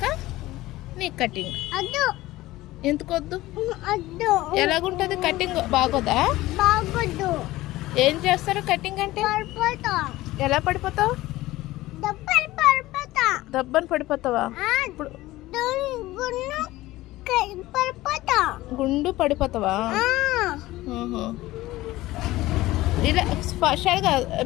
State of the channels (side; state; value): right; quieter; 17.5 dB